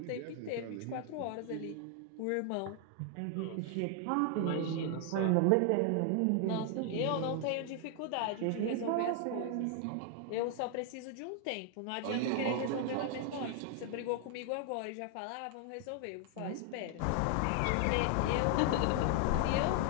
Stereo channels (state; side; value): different; both; correlation 0.00